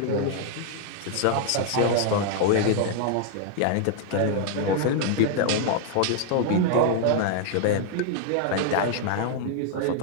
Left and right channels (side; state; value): both; different; correlation 0.00